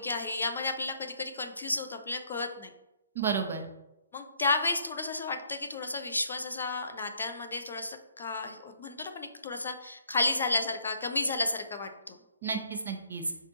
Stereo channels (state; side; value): inverted; both; correlation -0.64